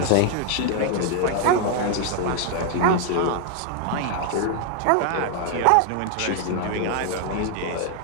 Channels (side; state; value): both; different; correlation 0.00